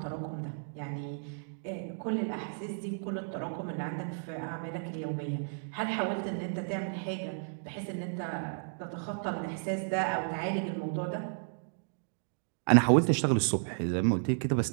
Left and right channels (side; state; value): left; silent; digital silence